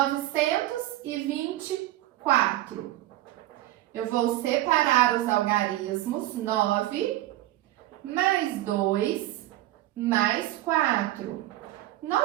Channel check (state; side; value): quieter; left; 15.8 dB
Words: Eu vou separar os algarismos. 9 mais 2 mais 4.